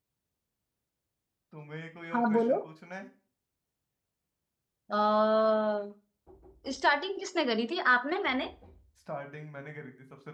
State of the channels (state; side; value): identical; both; correlation 1.00